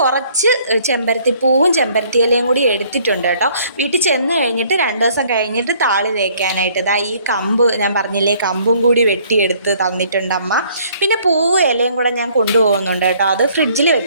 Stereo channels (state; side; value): inverted; both; correlation -0.60